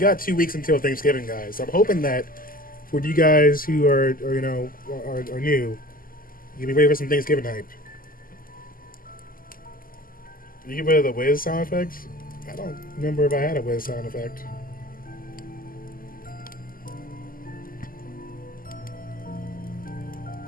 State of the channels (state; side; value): late; right; 0.41 ms